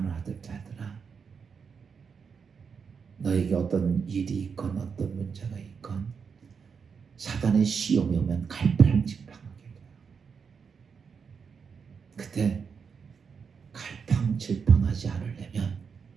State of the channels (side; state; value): left; quieter; 6.0 dB